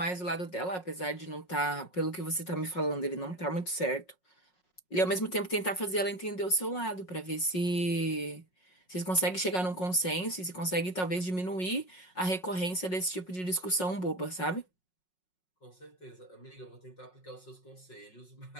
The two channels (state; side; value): late; right; 5.5 ms